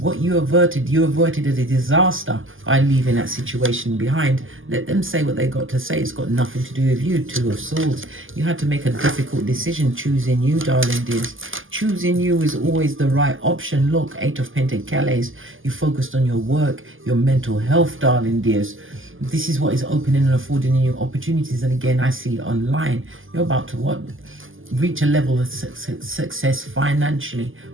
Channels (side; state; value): left; late; 0.58 ms